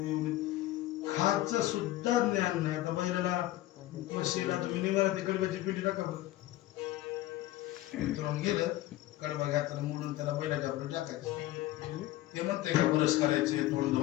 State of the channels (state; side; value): quieter; right; 15.7 dB